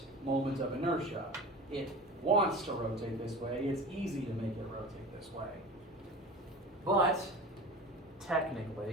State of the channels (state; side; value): normal; both; correlation 0.35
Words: moment of inertia. It wants to rotate this way. It's easy to make it rotate this way. But,